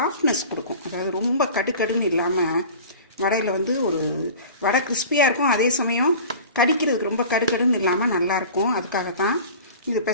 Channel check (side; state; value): both; inverted; correlation -0.39